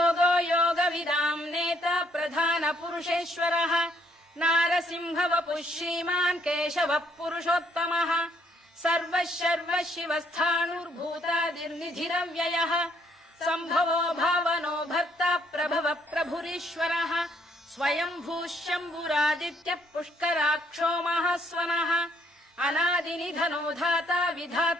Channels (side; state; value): both; normal; correlation 0.68